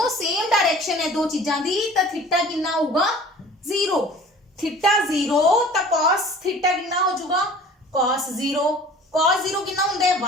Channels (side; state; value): both; normal; correlation 0.46